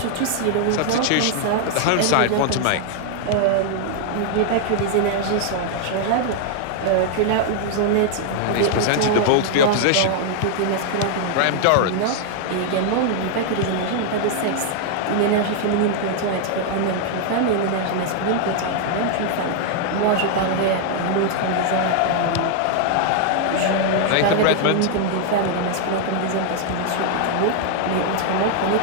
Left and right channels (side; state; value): both; different; correlation 0.00